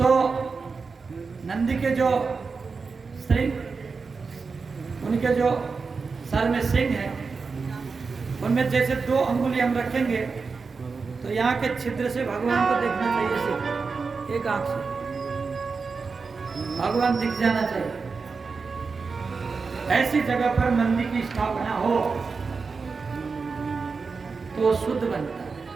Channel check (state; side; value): quieter; left; 4.7 dB